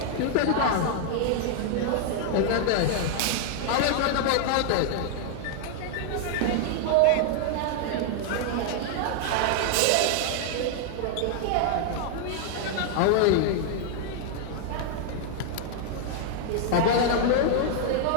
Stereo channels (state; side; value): different; both; correlation 0.00